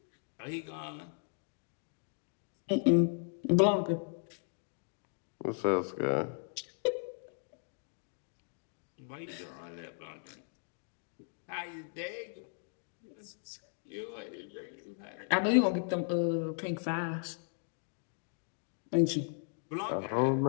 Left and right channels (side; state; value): right; silent; digital silence